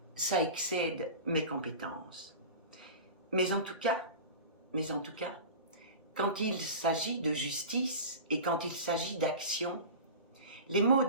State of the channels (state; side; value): inverted; both; correlation -0.32